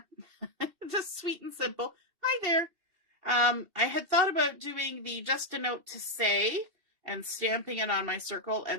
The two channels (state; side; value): late; left; 2.7 ms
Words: Just sweet and simple. Hi there. I had thought about doing the just a note to say and stamping it on my circle